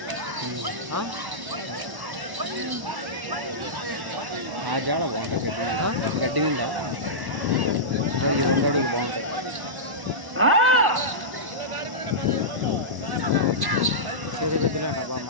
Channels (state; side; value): late; left; 1.1 ms